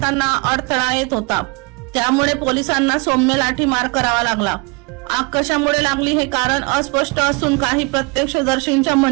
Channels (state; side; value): quieter; left; 29.2 dB